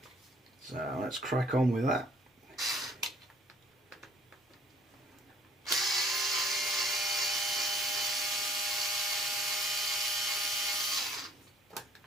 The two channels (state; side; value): normal; both; correlation 0.60